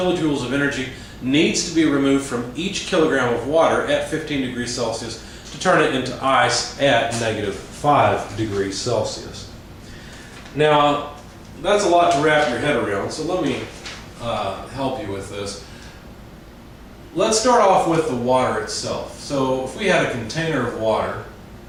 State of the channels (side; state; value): both; identical; correlation 1.00